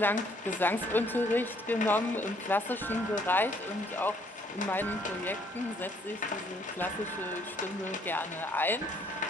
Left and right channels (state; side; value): normal; both; correlation 0.65